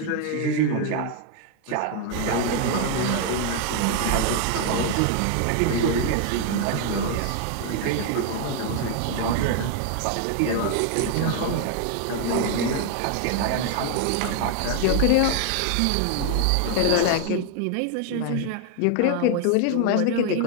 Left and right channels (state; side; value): different; both; correlation 0.00